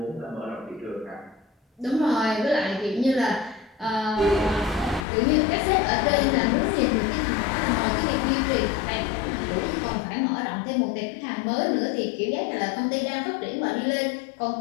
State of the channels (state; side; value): drops out; right; at 5.1 s